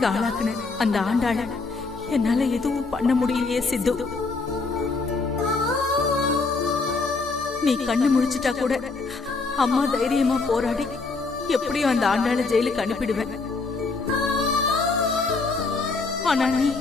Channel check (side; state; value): right; quieter; 4.0 dB